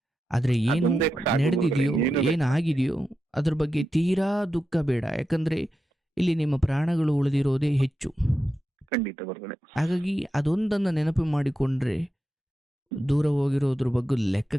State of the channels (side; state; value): both; normal; correlation 0.89